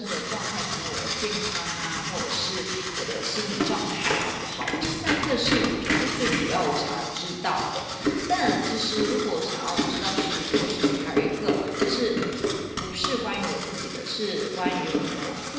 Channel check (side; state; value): both; identical; correlation 1.00